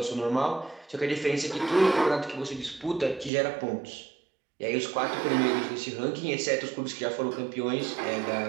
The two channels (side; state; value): left; drops out; at 3.3 s